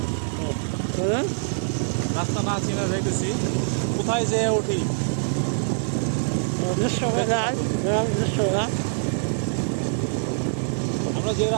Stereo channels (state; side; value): silent; left; digital silence